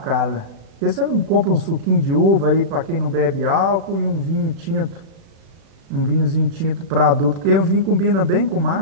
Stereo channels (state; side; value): late; left; 36 ms